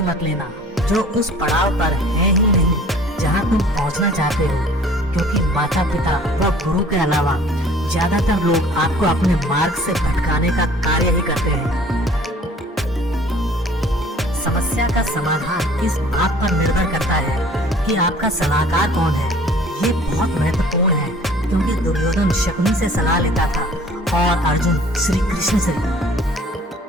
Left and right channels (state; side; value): normal; both; correlation 0.51